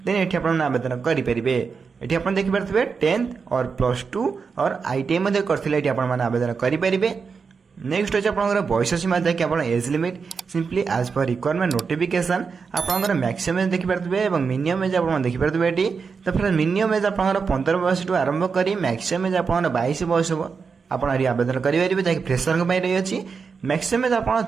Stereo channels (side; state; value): left; quieter; 5.4 dB